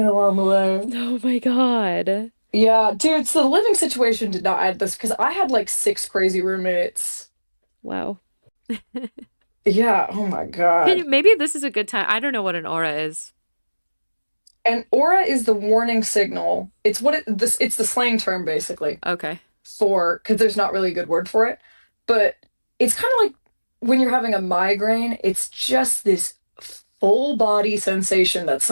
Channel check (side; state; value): both; inverted; correlation -1.00